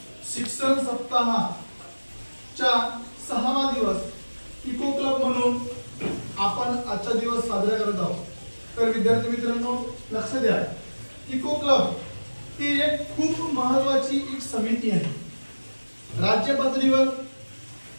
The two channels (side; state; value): both; inverted; correlation -1.00